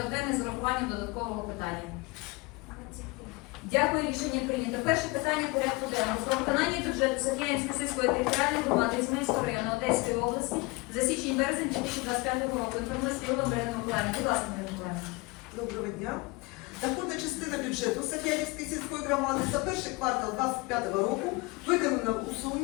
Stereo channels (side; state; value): right; quieter; 24.9 dB